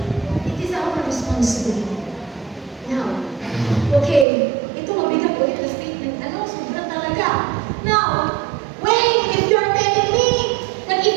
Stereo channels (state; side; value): drops out; left; at 4.2 s